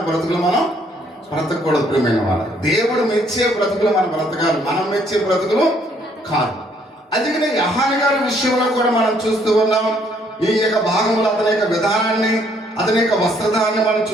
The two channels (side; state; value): both; normal; correlation 0.66